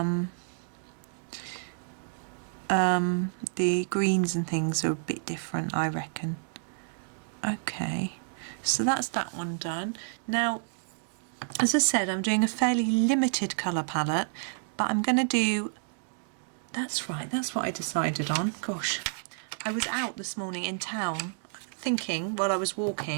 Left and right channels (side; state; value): left; silent; digital silence